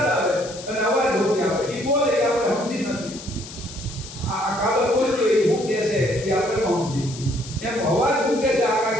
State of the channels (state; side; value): noise; left; hiss, 14 dB below the sound